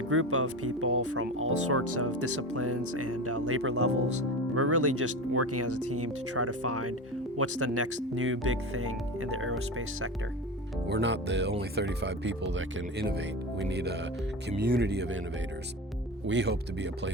group of people from all sorts of disciplines and labor levels. We're really just working as a team to try to find what's the next new big thing in the aerospace sector. We're not the only 35 people that can innovate. We need a community of innovators. We hope to be a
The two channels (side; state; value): both; normal; correlation 0.26